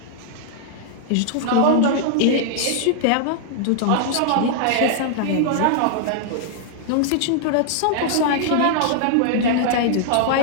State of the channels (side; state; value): both; different; correlation -0.01